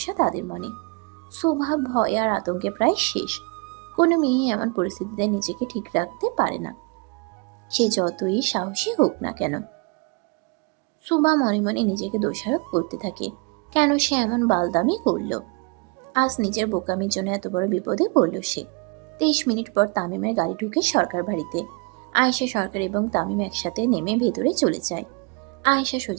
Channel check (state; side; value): quieter; left; 29.9 dB